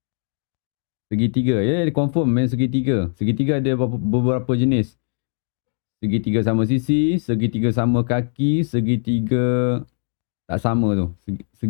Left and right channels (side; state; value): right; silent; 60 dB below the other